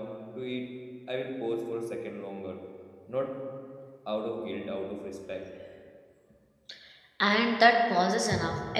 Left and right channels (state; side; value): identical; both; correlation 1.00